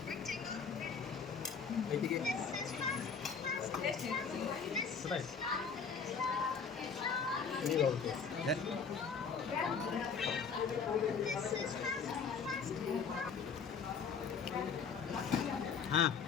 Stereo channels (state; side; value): quieter; right; 5.9 dB